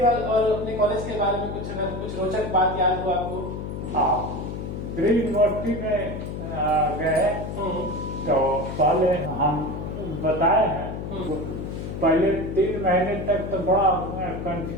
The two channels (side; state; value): left; noise; hum, 6 dB below the sound